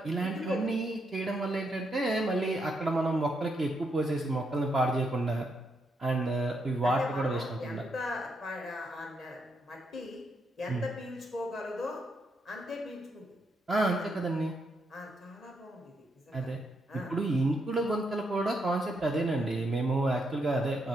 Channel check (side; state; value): both; normal; correlation 0.79